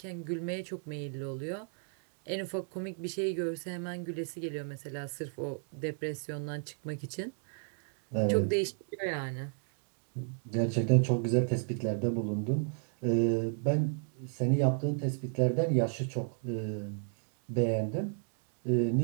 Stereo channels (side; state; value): left; silent; 55 dB below the other